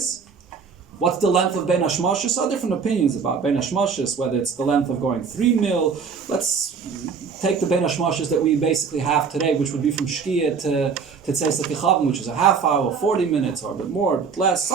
What's the length of Bein Hashmashis? So different opinions about Bein Hashmashis, whether it's the length of going 3 mil. Let's take the Bein Hashmashis that we basically have today, which would be from Shkia to Tzeis HaKechavim, which is a half hour, 40 minutes, or a bit more, a bit less,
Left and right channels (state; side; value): quieter; left; 5.8 dB